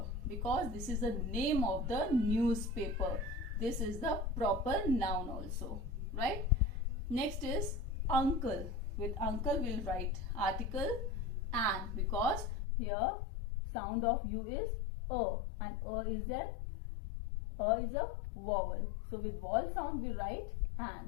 because this is the name of the newspaper. This is the proper noun also, right? Next is uncle. With uncle we'll write article an because here sound of u is a, and is then is a vowel. So with vowel sound we write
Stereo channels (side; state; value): right; drops out; at 12.6 s